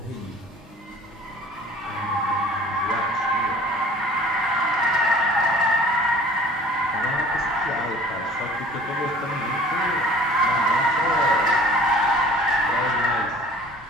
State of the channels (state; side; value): normal; both; correlation 0.48